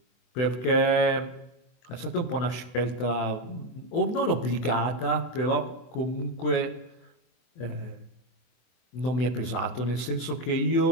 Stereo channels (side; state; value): right; late; 24 ms